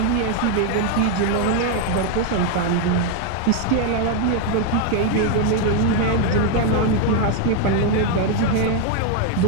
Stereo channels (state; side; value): different; both; correlation 0.01